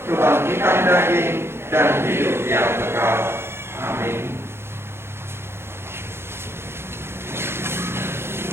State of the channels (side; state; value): left; late; 0.12 ms